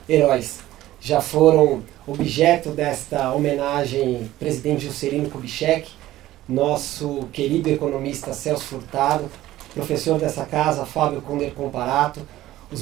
heróis. Já foram objeto desta homenagem presidente Juscelino Kubitschek, nosso querido economista Celso Furtado, professor dessa casa Fábio Conder Comparato, os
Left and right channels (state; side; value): quieter; left; 15.1 dB